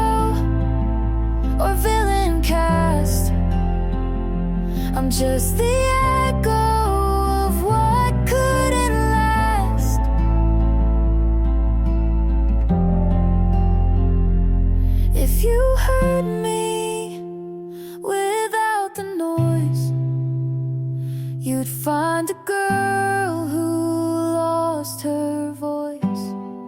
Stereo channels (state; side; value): identical; both; correlation 1.00